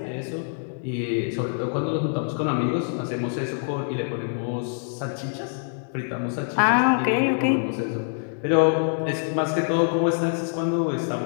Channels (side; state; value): right; silent; digital silence